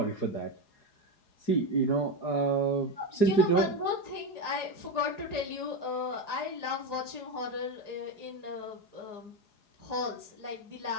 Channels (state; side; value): late; right; 4.8 ms